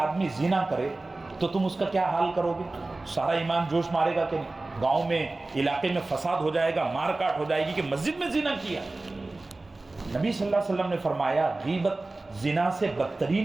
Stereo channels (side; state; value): left; quieter; 3.1 dB